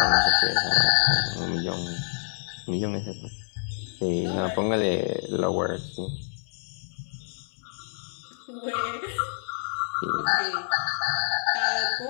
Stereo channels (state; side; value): silent; right; 60 dB below the other